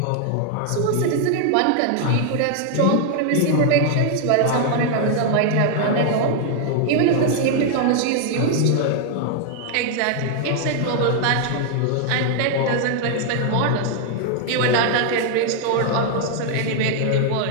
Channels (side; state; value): both; different; correlation 0.00